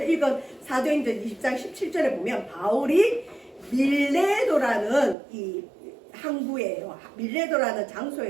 읽은 사도행전 20장 17절에 보면 바울이 밀레도라는 이 항구예요. 밀레도라는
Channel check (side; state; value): left; drops out; at 5.2 s